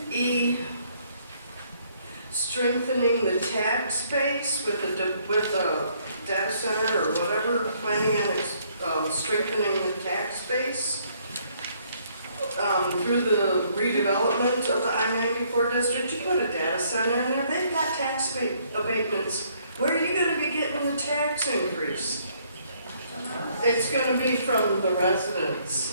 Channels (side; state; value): both; inverted; correlation -0.66